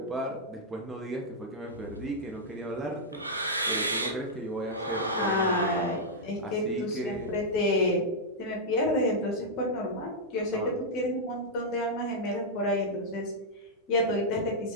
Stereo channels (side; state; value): both; normal; correlation -0.07